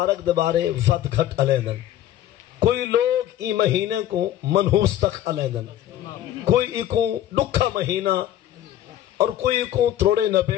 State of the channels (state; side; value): quieter; right; 12.3 dB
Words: دے بارے ود گھٹ علیندن. کوئی لوگ ای مہینے کو منحوس تک علیندن، کوئی کو ڈکھا مہینہ اور کوئی کو تروڑے